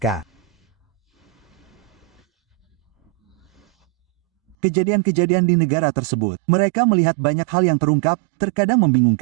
Kejadian-kejadian di negara tersebut. Mereka melihat banyak hal yang terungkap, terkadang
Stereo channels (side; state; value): left; drops out; at 4.5 s